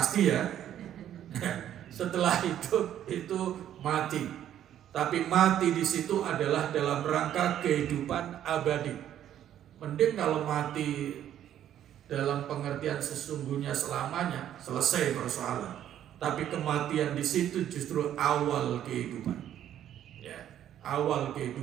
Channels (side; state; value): left; quieter; 11.0 dB